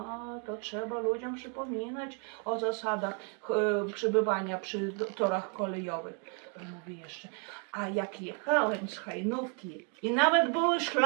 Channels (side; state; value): left; quieter; 39.2 dB